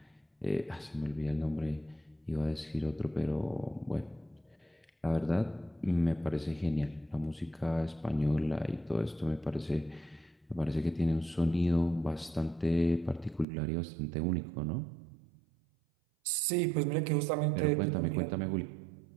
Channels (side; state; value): left; drops out; at 13.5 s